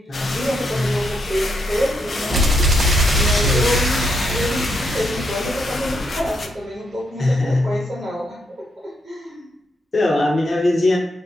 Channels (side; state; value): both; normal; correlation 0.79